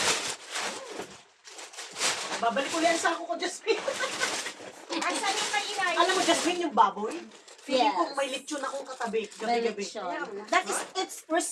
Babalik ko yan sa sako ko, Jasmine. Asan yung may inay? Alam mo, Jasmine, yung baboy? Feeling ko Yes. may lechon akong katabi. May Gabi-gabi. lechon. That is, it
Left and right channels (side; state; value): both; identical; correlation 1.00